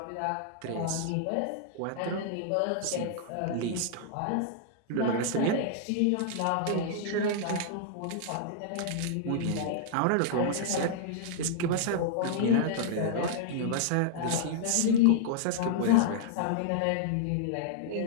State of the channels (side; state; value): both; different; correlation -0.01